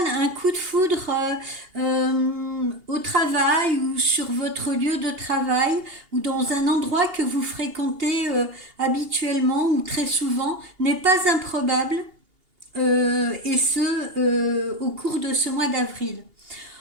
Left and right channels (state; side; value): late; left; 2.8 ms